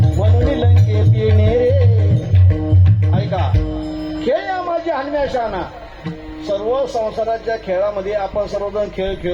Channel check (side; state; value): both; identical; correlation 1.00